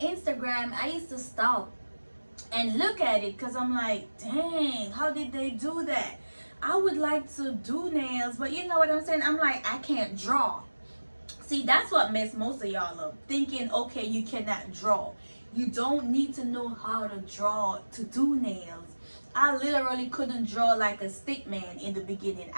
Instagram, I used to stop and look at it because I'm like, dang, how did they do that? I would like to do nails, but you know what I'm saying? I'm like, I can't draw. See, that's what messed most of y'all up, thinking, okay, you cannot draw. You don't need to know how to draw to do nails. I literally couldn't draw like a stick man in the beginning.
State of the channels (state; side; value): inverted; both; correlation -1.00